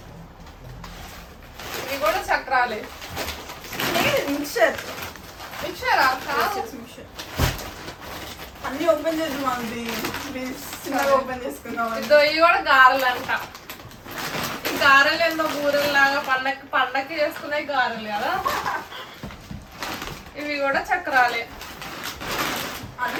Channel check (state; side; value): identical; both; correlation 1.00